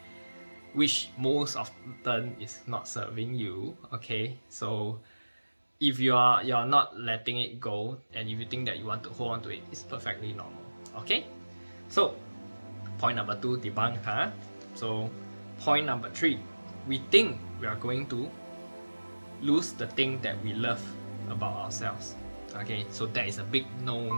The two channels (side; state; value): both; inverted; correlation -1.00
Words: which most often is not serving you, okay? So if you're not letting it go, and if you think that you want to hold on to it, it's perfectly normal. Okay? So point number 2, debunk, huh? So point number 3, we think we are going to lose the thing that we love about ourselves. Okay, so that is a big